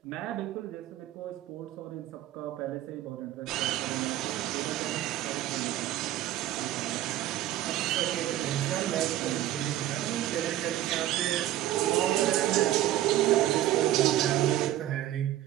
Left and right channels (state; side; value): quieter; left; 13.6 dB